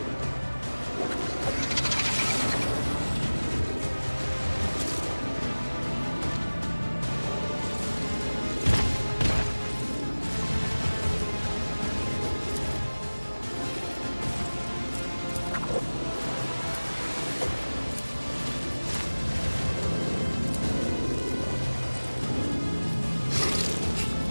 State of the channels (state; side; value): inverted; both; correlation -1.00